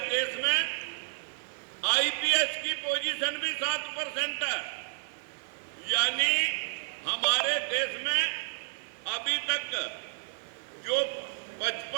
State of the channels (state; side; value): silent; left; 55 dB below the other